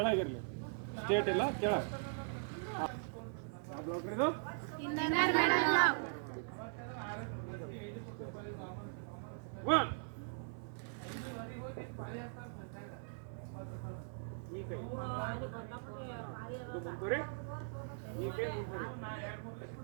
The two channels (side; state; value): left; silent; 51 dB below the other